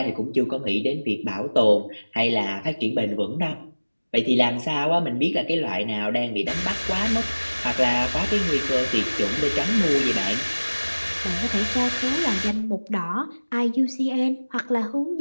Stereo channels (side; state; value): both; inverted; correlation -1.00